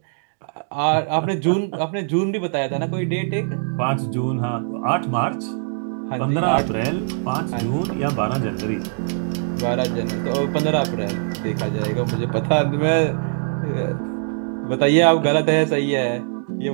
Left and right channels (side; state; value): left; silent; digital silence